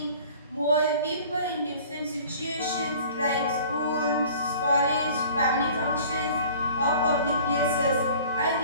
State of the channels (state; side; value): inverted; both; correlation -0.47